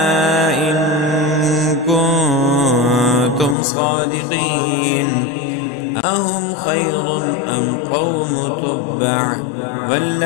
إن كنتم صادقين أهم خير أم قوم تبع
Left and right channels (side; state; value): right; drops out; at 3.6 s